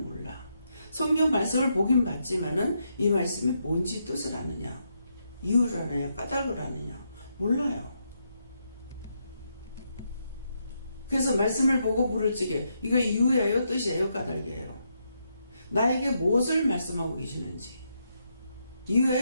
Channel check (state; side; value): inverted; both; correlation -0.80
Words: 성경 말씀을 보긴 봤지만은 이 말씀이 뭔지 뜻을 아느냐, 이유를 아느냐, 까닭을 아느냐 몰라요. 그래서 말씀을 보고 물을 찌게 이거 이유예요, 뜻이에요, 까닭이에요? 나에게 무엇을 말씀하고 계시는지,